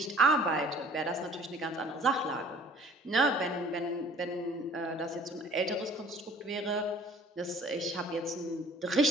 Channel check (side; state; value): both; normal; correlation 0.52